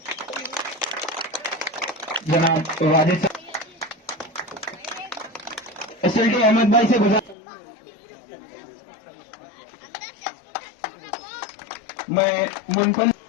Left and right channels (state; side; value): drops out; right; at 7.4 s